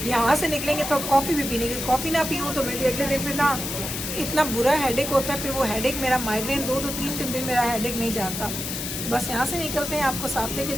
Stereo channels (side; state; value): left; noise; hiss, 5 dB below the sound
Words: यहाँ से निकलेंगे तो कॉफ़ी भी पीने की, कॉफ़ी ना पीऊँ तो मेरे अगले दिन फिर ना इतना बुरा हेडेक होता है, फिर वो हेडेक मेरा माइग्रेन 2-3 दिन मेरा हेडेक नहीं जाता। बस यहाँ से निकलते हैं, आपको साथ लेके